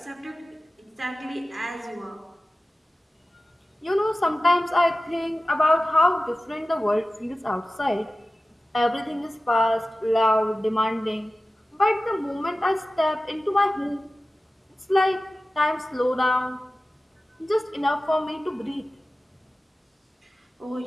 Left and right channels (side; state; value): both; normal; correlation 0.96